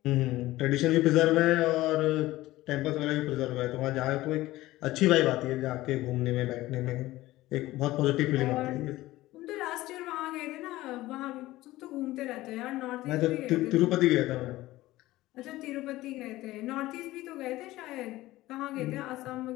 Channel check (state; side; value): quieter; right; 17.2 dB